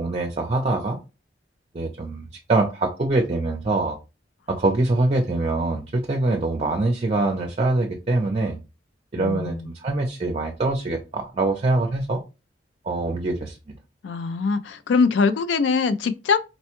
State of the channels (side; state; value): both; normal; correlation 0.54